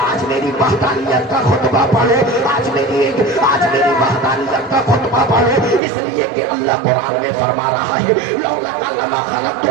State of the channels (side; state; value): left; drops out; at 5.8 s